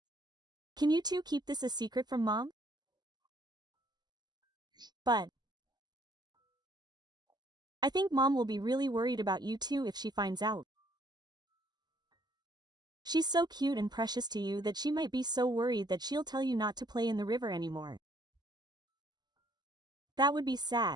Can you two keep this a secret from Mom? But I think Mom will be really worried about you two if she finds out. She's so cute and precious to you that she might be so worried that she'll tell you not to play in the river anymore. That would be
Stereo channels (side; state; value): left; late; 0.20 ms